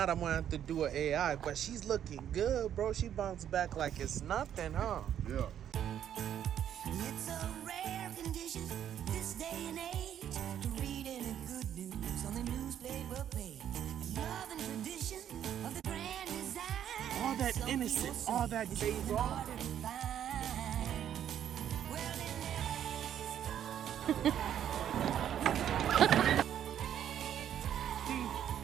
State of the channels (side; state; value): left; quieter; 10.0 dB